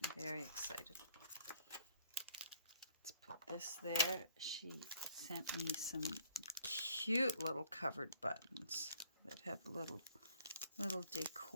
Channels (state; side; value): inverted; both; correlation -0.60